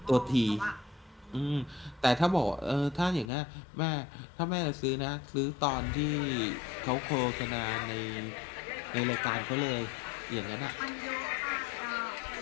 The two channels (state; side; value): drops out; right; at 3.3 s